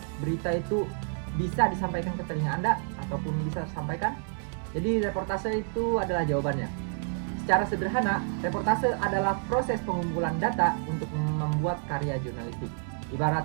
berita itu bisa disampaikan ke telinga Anda ataupun bisa disampaikan? Jadi reportase itu adalah jawabannya. Secara sederhana, reportase adalah proses pengumpulan data untuk membuat karya jurnalistik.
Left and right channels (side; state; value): left; silent; 59 dB below the other